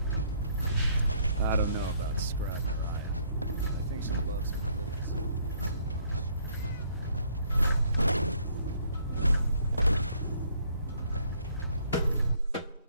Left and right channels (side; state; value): both; inverted; correlation -0.64